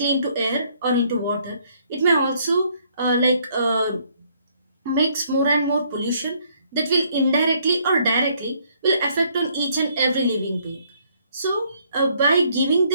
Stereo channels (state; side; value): inverted; both; correlation -0.67